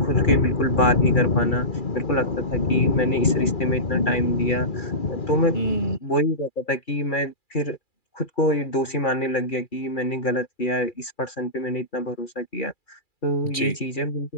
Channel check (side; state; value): right; late; 2.4 ms